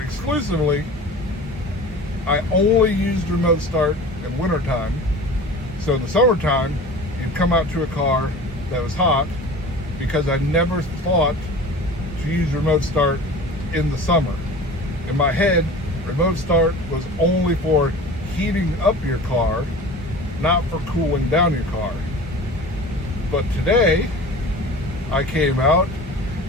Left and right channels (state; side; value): normal; both; correlation 0.39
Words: I only used remote start in wintertime. So in the summertime, you'd come out to a car that was hot, because I never thought to use remote start in the summer. In my head, remote start was only for heating up your car, not for cooling down your car. But today, I came out